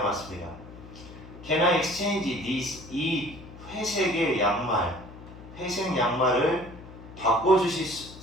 맞습니다. Can I exchange this? 이 회색 양말을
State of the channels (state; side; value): noise; left; hum, 16 dB below the sound